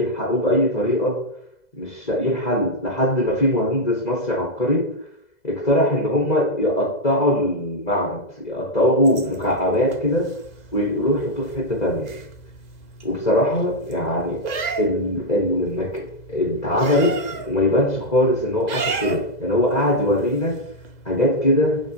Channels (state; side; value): late; right; 2.0 ms